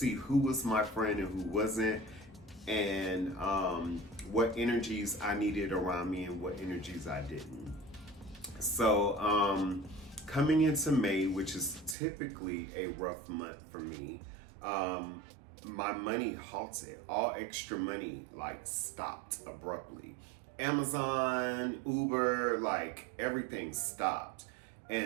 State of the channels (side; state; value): left; drops out; at 12.0 s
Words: who was my friend and who wasn't, and what energies I needed around me and what energies I didn't. So coming into May, which is typically a rough month for me, my money halted. All extra money stopped abruptly. Amazon, Uber, everything stopped.